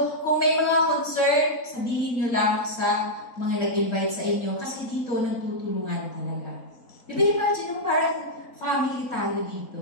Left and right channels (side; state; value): right; late; 4.4 ms